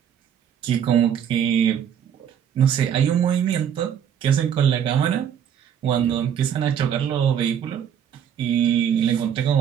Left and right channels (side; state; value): left; quieter; 8.8 dB